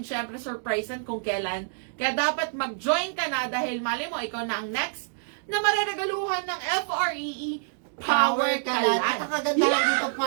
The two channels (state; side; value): silent; left; digital silence